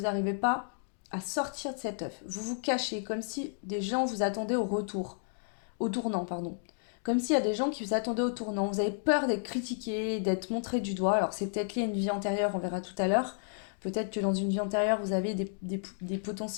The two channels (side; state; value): right; silent; digital silence